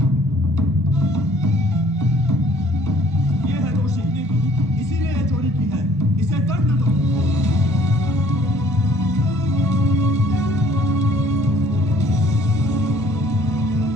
ये है दोषी, इसीलिए ये चोरी की है, इसे दंड दो।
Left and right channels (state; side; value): normal; both; correlation 0.58